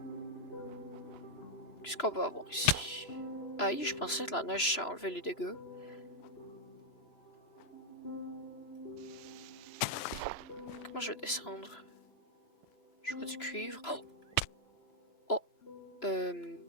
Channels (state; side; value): late; right; 3.0 ms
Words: Qu'est-ce qu'on va avoir ici? Aïe, je pensais que la neige ça enlevait les dégâts. Comment je vais descendre? Je vois du cuivre. Oh! Oh!